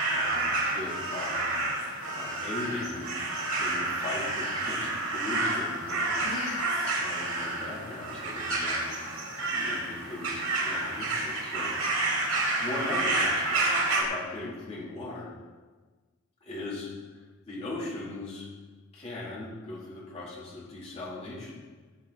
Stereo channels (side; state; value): both; normal; correlation 0.08